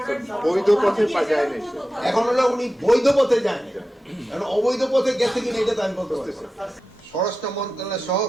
বৈধ পথে যায় না। এখন হলো উনি বৈধ পথে যায়নি, কারণ অবৈধ পথে গেছে কিনা এটা তো আমি বলতে পারছি। স্বরাষ্ট্র মন্ত্রণালয় সহ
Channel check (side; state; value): both; normal; correlation 0.93